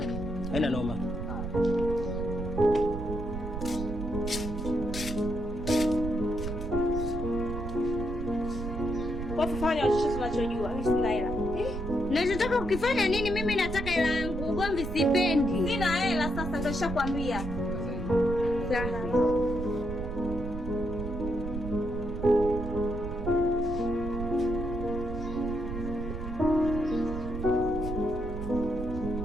Haina noma. Kwa kufanya chochote unachojua, mimi sina hela. Nachotaka ukifanya nini? Mimi nataka hela yangu. Ugomvi sipendi. Sina hela sasa, ndio nishakwambia. Sawa.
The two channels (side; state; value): right; noise; rumble, 6 dB below the sound